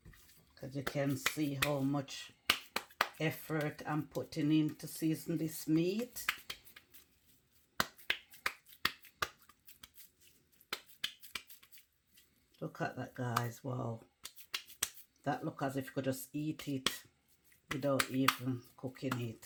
Because you can see how much effort I'm putting in to season this meat. Look at that, guys. Wow. That looks as if you could just eat it without even cooking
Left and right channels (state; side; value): identical; both; correlation 1.00